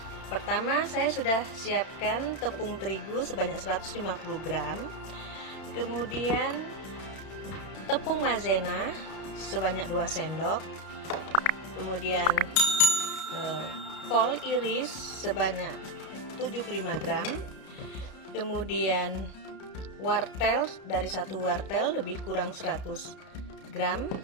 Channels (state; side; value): late; right; 32 ms